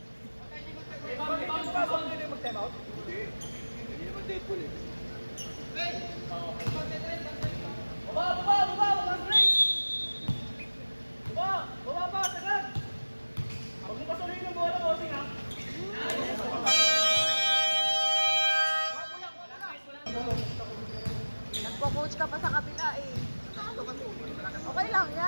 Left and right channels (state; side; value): inverted; both; correlation -1.00